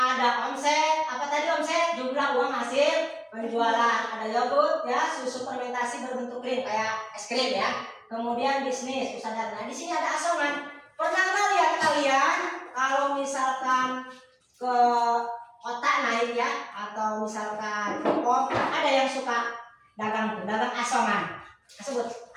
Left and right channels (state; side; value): identical; both; correlation 1.00